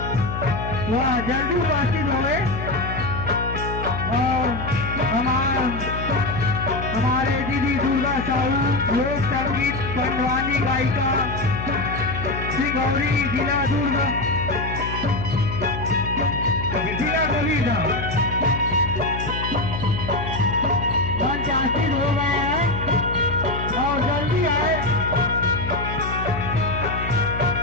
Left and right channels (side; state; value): left; noise; hum, 6 dB below the sound